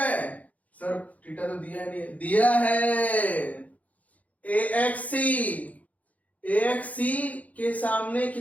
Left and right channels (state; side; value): late; right; 0.072 ms